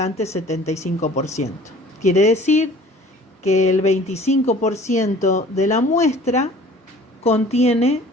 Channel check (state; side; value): normal; both; correlation 0.49